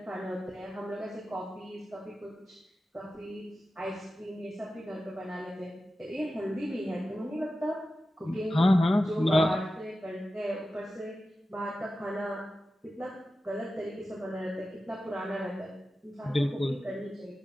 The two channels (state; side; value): normal; both; correlation 0.93